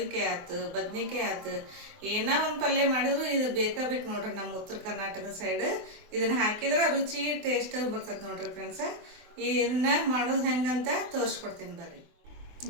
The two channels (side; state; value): left; late; 24 ms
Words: ಆಯ್ತು, ಬದ್ನಿಕಾಯಿ ಆಯ್ತು, ಏನೋ ಒಂದು ಪಲ್ಯ ಮಾಡಿದ್ರು ಇದು ಬೇಕು ನೋಡ್ರಿ. ನಮ್ಮ ಉತ್ತರ ಕರ್ನಾಟಕದ ಸೈಡ್ ಇದನ್ನು ಹಾಕಿದ್ರೆ ರುಚಿ ಟೇಸ್ಟ್ ಬರ್ತದೆ ನೋಡ್ರಿ ಫ್ರೆಂಡ್ಸ. ಇದನ್ನ ಮಾಡೋದು ಹೆಂಗಂತ ತೋರಿಸ್ಕೊಡ್ತೀನಿ ಬರ್ರಿ